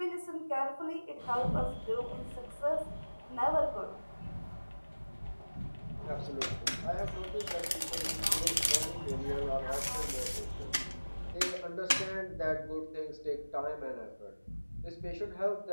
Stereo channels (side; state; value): both; inverted; correlation -1.00